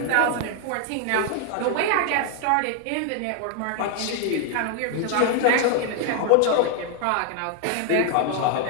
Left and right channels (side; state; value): both; different; correlation 0.00